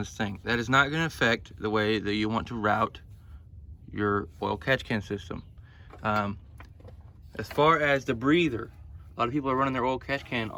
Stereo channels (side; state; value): both; identical; correlation 1.00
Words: thing. That is not going to affect the way that you want to route your oil catch can system. As far as the breather, a lot of people are running their oil catch can